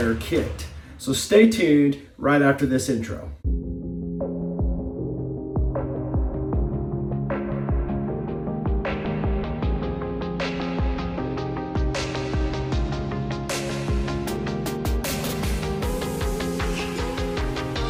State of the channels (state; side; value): identical; both; correlation 1.00